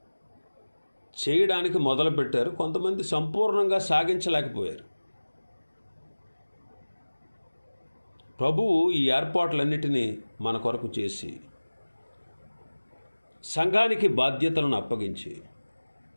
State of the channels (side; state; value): both; inverted; correlation -1.00